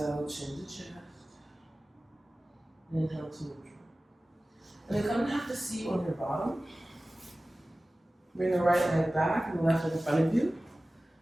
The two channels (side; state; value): both; normal; correlation 0.96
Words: chin to chest. Inhale to neutral. And then come and have the seat on your bottom. Bring the right leg back and the left leg in front of you.